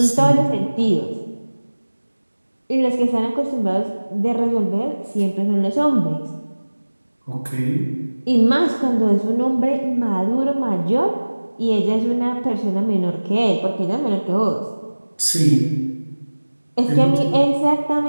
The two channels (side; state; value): both; inverted; correlation -1.00